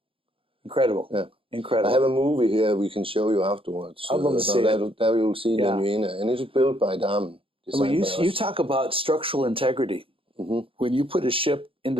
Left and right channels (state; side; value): late; left; 0.26 ms